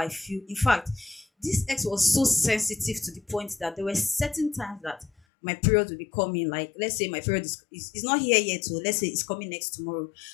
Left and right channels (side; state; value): right; drops out; at 5.1 s